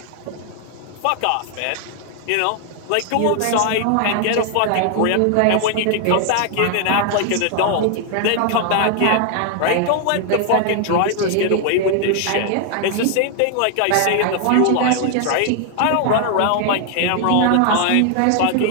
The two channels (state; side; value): different; both; correlation 0.00